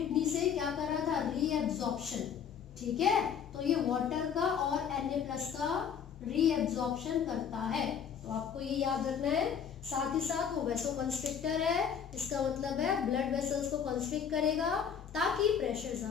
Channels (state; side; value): quieter; right; 7.6 dB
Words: से क्या कर रहा था, रीएब्जॉर्प्शन, ठीक है। तो ये वाटर का और Na+ का रीएब्जॉर्प्शन करता है, तो आपको ये याद रखना है। साथ ही साथ वो वैसोकॉन्स्ट्रिक्टर है, इसका मतलब है ब्लड वेसल्स को कॉन्स्ट्रिक्ट करेगा ताकि प्रेशर